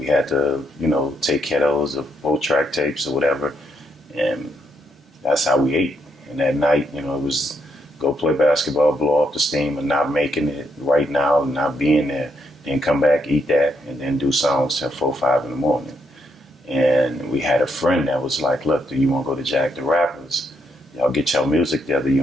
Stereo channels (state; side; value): normal; both; correlation 0.76